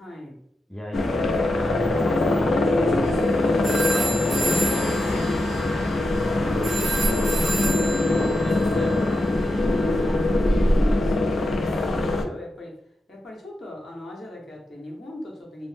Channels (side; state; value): both; normal; correlation 0.88